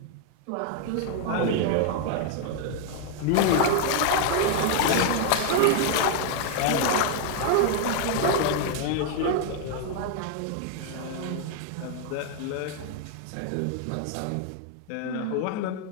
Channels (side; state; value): both; different; correlation 0.00